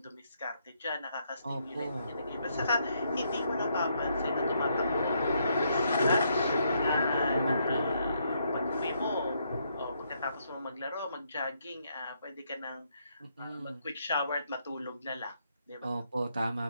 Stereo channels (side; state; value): both; inverted; correlation -0.75